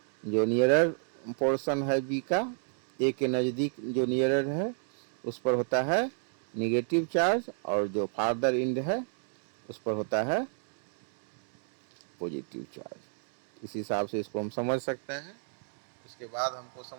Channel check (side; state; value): left; silent; digital silence